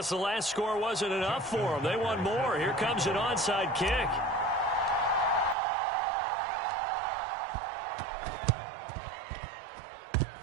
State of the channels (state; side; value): drops out; left; at 5.6 s